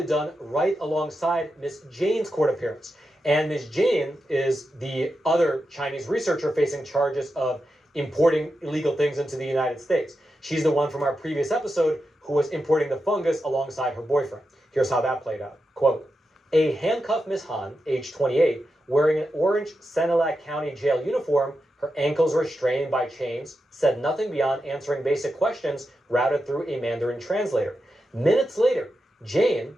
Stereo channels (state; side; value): normal; both; correlation 0.88